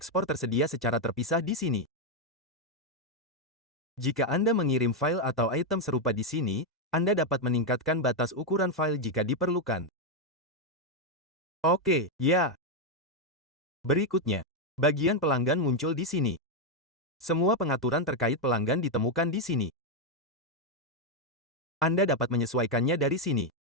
tersedia secara terpisah di sini. Jika Anda mengirim file atau item serupa di sini, Anda dapat meningkatkan batas ukuran file jika diperlukan. Oke, ya. Berikutnya, bagian pelanggan muncul di sini. Semua pengaturan terkait pelanggan ditemukan di sini. Anda dapat menyesuaikannya dari sini.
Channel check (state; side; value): normal; both; correlation 0.02